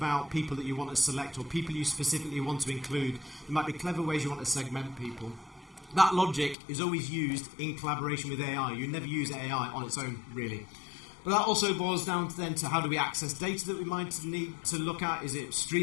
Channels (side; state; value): right; drops out; at 6.6 s